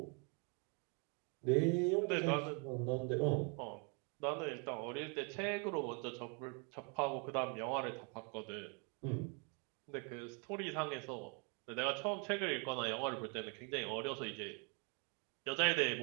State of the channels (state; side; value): quieter; left; 35.9 dB